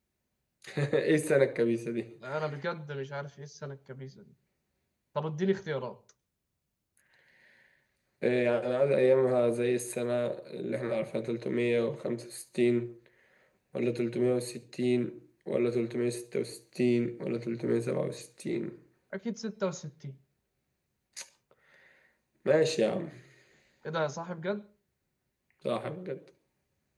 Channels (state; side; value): identical; both; correlation 1.00